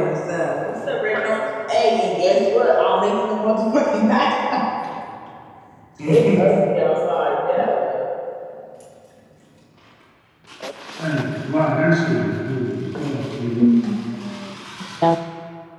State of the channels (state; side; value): identical; both; correlation 1.00